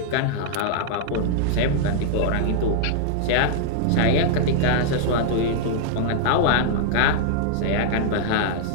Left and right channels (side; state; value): both; different; correlation -0.01